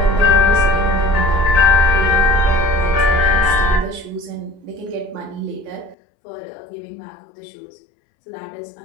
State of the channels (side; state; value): right; drops out; at 6.0 s